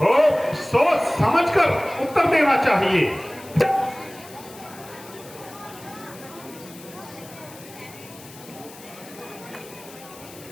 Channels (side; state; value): left; noise; hiss, 19 dB below the sound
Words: सोच समझकर उत्तर देना चाहिए।